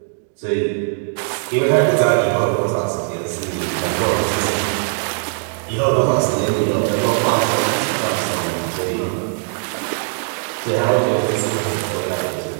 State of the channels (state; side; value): silent; left; digital silence